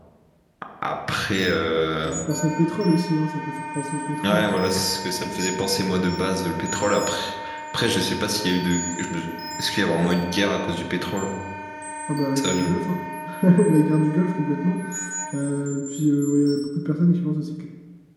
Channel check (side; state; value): both; identical; correlation 1.00